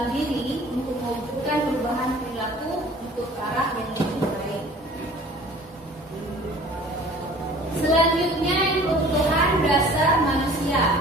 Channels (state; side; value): normal; both; correlation 0.48